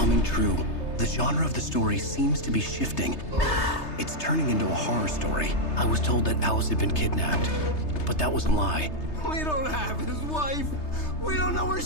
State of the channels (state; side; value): late; right; 3.3 ms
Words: true. The genre of the story seems to be shifting. It's turning into a horror story. I was told that Alice had been kidnapped, but that was a lie. We don't have his wife. We don't know where